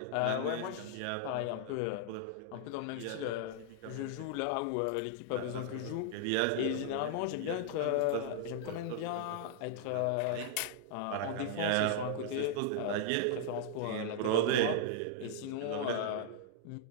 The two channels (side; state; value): both; different; correlation -0.01